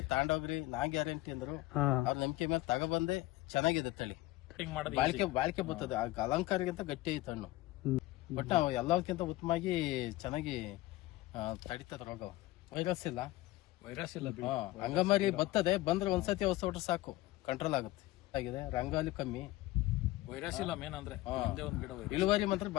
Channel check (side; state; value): right; quieter; 18.0 dB